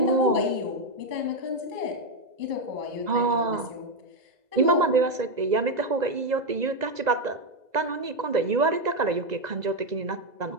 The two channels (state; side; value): late; left; 2.0 ms